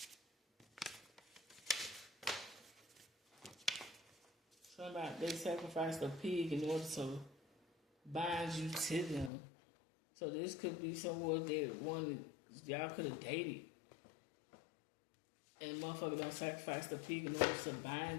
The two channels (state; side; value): drops out; right; at 9.3 s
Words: Something about they sacrificed a pig in order to bind you to them. So this could be someone that wanted, y'all could have dated. And motherfucker don't sacrifice the pig in order to